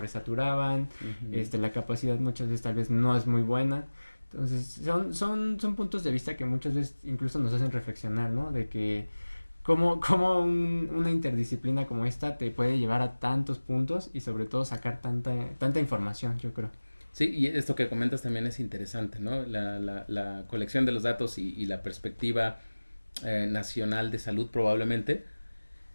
Uh-huh. la capacidad muchas veces tal vez no es muy buena. Entonces, son puntos de vista que muchas veces incluso nos hacen reflexionar, ¿no? De que cómo una interdisciplina como esta te puede llevar a tantos puntos y sobre todo sacar tanta información, yo creo. Sí, y esto que comentas también es interesante, ¿no? La colección de los datos y la perspectiva nacional de salud probablemente,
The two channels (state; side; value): inverted; both; correlation -1.00